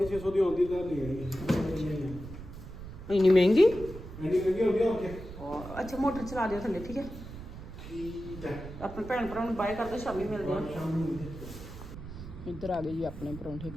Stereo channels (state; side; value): noise; right; rumble, 12 dB below the sound